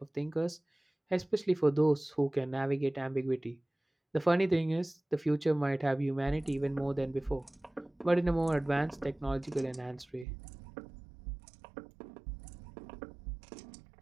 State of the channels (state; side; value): drops out; left; at 10.2 s